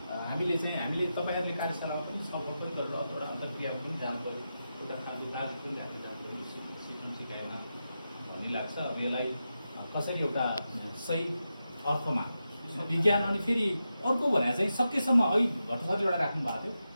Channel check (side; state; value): both; inverted; correlation -0.89